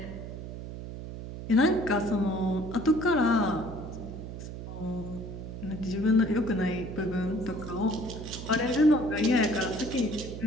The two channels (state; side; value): noise; right; hum, 9 dB below the sound